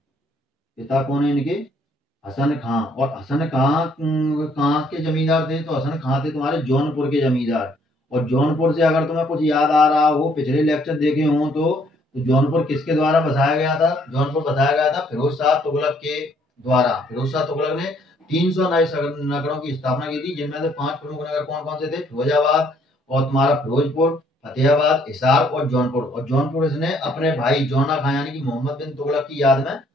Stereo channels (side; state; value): both; normal; correlation 0.65